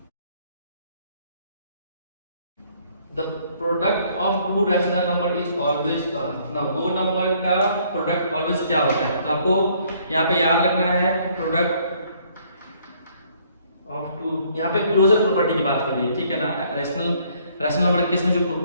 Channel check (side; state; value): both; inverted; correlation -0.64